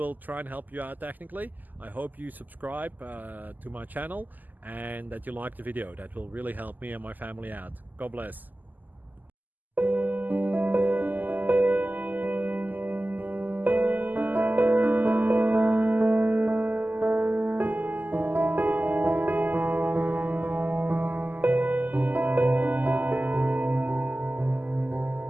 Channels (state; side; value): late; left; 0.084 ms